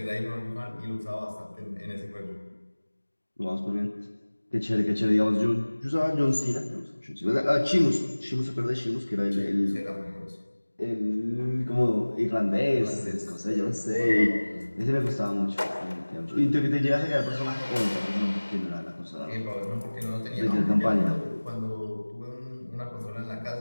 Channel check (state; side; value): inverted; both; correlation -1.00